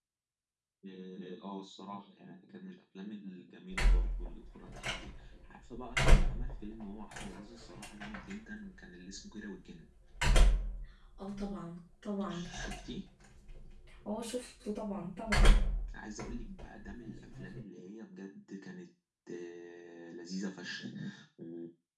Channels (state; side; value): identical; both; correlation 1.00